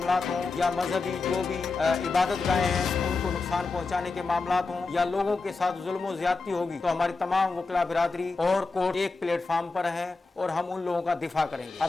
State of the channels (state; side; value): quieter; right; 3.9 dB